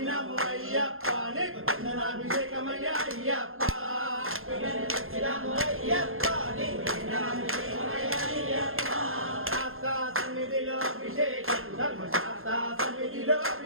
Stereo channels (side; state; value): left; late; 0.61 ms